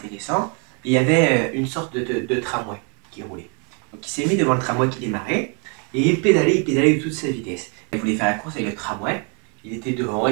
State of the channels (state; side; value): quieter; left; 37.4 dB